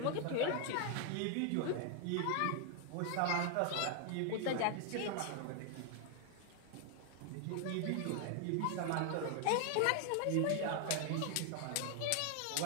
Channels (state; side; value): different; both; correlation 0.00